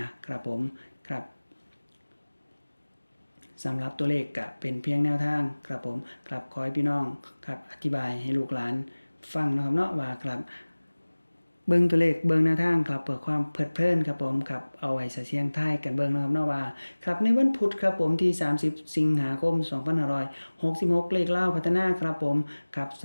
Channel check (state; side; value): inverted; both; correlation -1.00